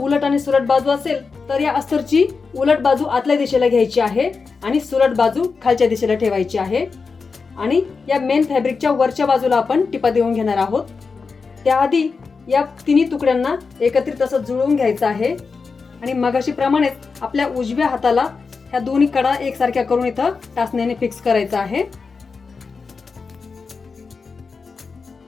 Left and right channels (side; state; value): right; quieter; 4.8 dB